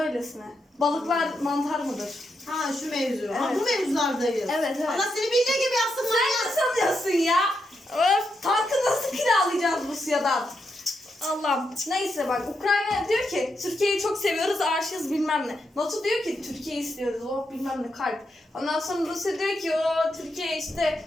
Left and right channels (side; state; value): both; normal; correlation 0.83